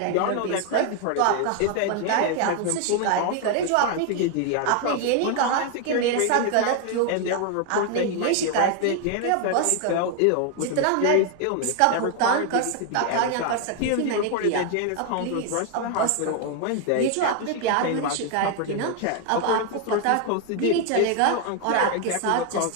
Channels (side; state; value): both; different; correlation 0.01